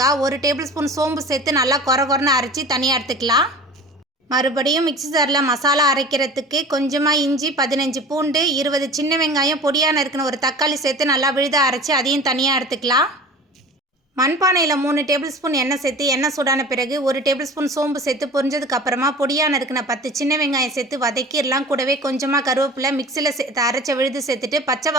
1 டேபிள் ஸ்பூன் சோம்பு சேர்த்து நல்லா கொரன்னு அரைச்சி தனியாக எடுத்துக்கலாம். மறுபடியும் மிக்ஸி ஜாரில் மசாலா அரைக்கிறதுக்கு கொஞ்சமாக இஞ்சி, 15 பூண்டு, 20 சின்ன வெங்காயம், பொடியாக நறுக்குன ஒரு தக்காளி சேர்த்து நல்லா விழுதாக அரைச்சி அதையும் தனியாக எடுத்துக்கலாம். மண்பானையில் 3 டேபிள் ஸ்பூன் எண்ணெய் சேர்த்து எண்ணெய் சூடான பிறகு 1 டேபிள் ஸ்பூன் சோம்பு சேர்த்து பொரிஞ்சதுக்கு அப்புறமா பொடியாக நறுக்குன 10 சின்ன வெங்காயம் சேர்த்து வதக்கிடலாம். கூடவே கொஞ்சமாக கருவேப்பிலை மிக்சியில் சேர்த்து அரைச்ச விழுது சேர்த்துட்டு பச்சை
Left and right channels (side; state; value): both; normal; correlation 0.39